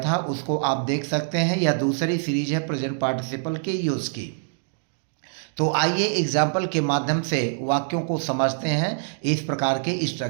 उसको आप देख सकते हैं। यह दूसरी सीरीज है प्रेजेंट पार्टिसिपल के यूज़ की। तो आइए एग्जाम्पल के माध्यम से वाक्यों को समझते हैं, इस प्रकार के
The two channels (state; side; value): silent; left; digital silence